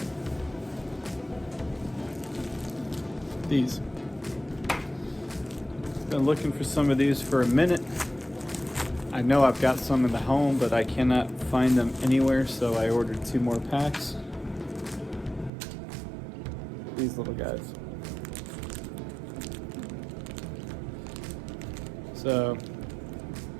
these. Been looking for some of these for a minute. I know I've got some in the home, but I cannot find them anywhere, so I ordered 2 more packs. These little guys. So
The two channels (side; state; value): left; drops out; at 15.5 s